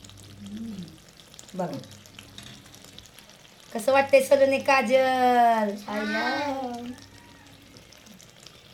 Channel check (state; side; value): identical; both; correlation 1.00